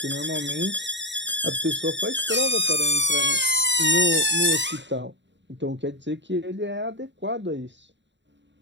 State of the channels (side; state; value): left; late; 0.53 ms